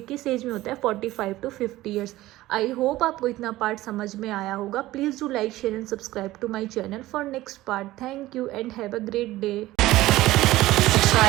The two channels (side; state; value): left; quieter; 16.7 dB